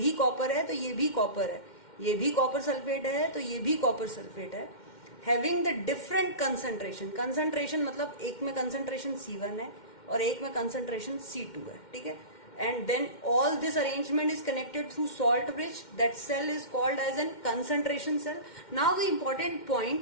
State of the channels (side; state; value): right; late; 2.1 ms